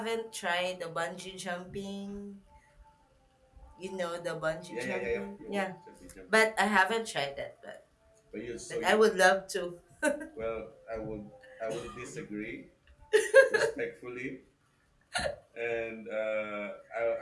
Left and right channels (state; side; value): identical; both; correlation 1.00